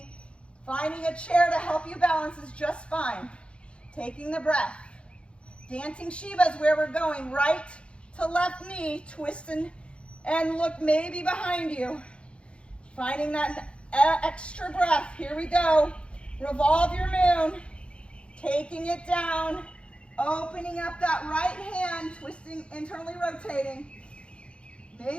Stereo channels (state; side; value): late; right; 0.058 ms